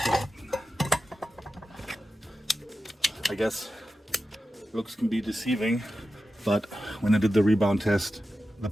So, I guess looks can be deceiving, but when I did the rebound test, the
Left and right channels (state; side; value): normal; both; correlation 0.92